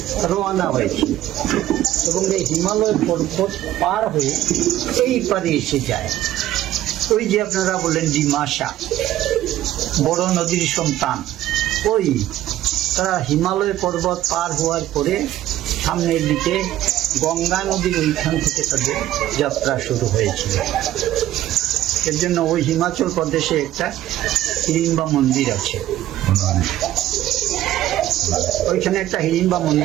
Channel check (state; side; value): quieter; left; 13.6 dB